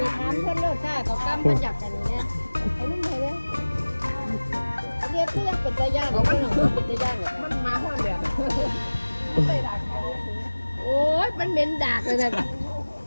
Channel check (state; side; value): inverted; both; correlation -1.00